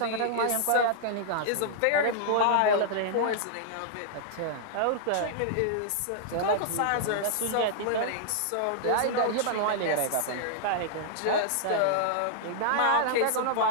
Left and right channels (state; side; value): different; both; correlation -0.01